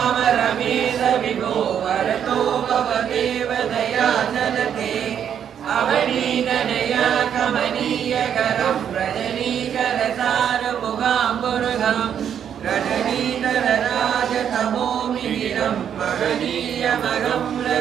रमेश विभो वरतो भवदेव दया चलते अवनीतनया कमनीयकरं रजनीकरसारमुगाम्बुरुहं रजनीतरराजतमोमिहिरं महनीयमहं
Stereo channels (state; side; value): quieter; left; 8.8 dB